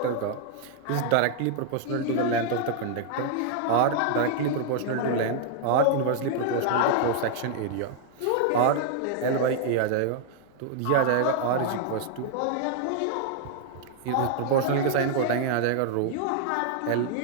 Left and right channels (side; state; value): both; different; correlation -0.01